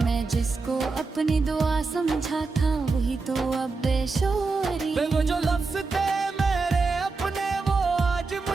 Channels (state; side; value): quieter; left; 4.1 dB